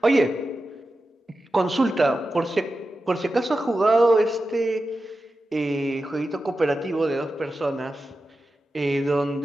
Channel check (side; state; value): both; normal; correlation 0.92